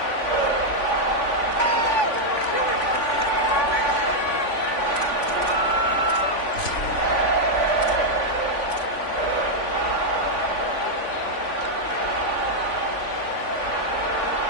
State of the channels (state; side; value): late; right; 3.5 ms